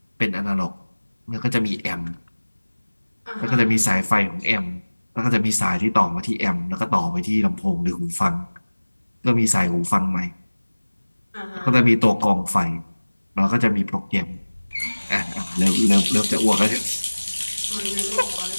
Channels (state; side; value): inverted; both; correlation -1.00